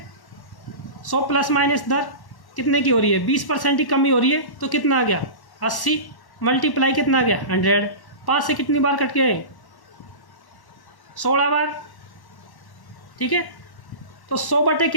100 प्लस माइनस दर कितने की हो रही है, 20% की कमी हो रही है, तो कितना आ गया 80, मल्टीप्लाई कितना आ गया 100। 5 से कितनी बार कट गए, 16 बार, ठीक है। तो 100 बटे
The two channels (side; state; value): right; late; 1.1 ms